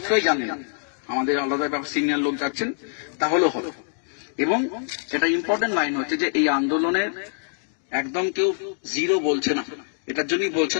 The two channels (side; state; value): right; silent; digital silence